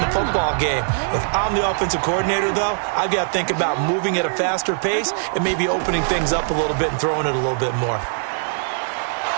football game. If I'm the offensive coordinator, though, I've got to think about moving at a faster pace and maybe opening things up a little bit and throwing it a little bit more.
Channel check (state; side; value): silent; left; digital silence